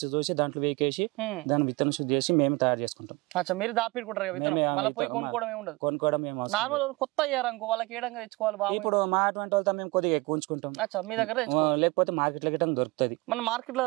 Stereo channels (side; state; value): left; quieter; 24.1 dB